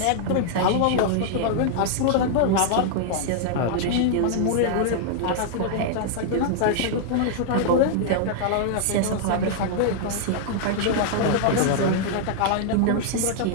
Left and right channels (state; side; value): different; both; correlation -0.01